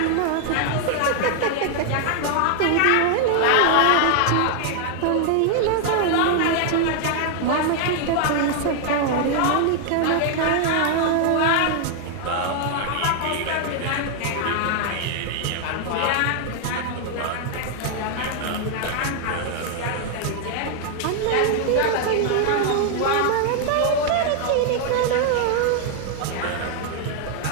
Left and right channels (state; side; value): different; both; correlation 0.00